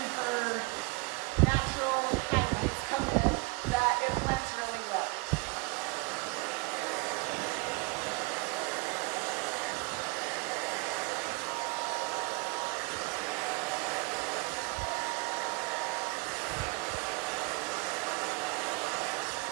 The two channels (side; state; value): left; quieter; 27.6 dB